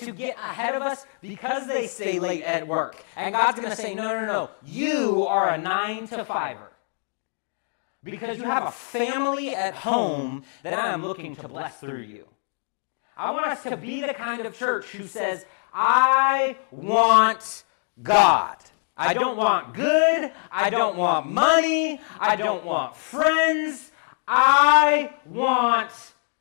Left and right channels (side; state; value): right; silent; digital silence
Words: ahead of us because they stay late at work. And God's going to say, no. You are a 9 to 5er. Because you have a family at home that I am looking to bless through you. I want us to be the kind of church who says, I want God. I don't want good. I don't want money. I don't want friends. I want